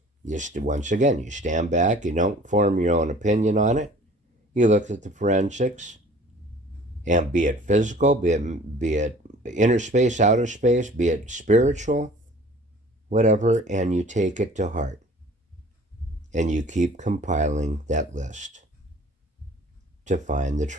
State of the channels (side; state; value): both; normal; correlation 0.49